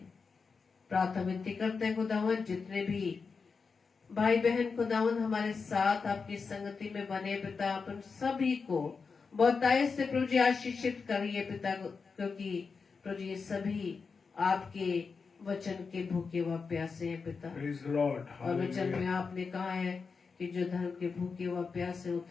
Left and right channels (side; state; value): right; quieter; 5.0 dB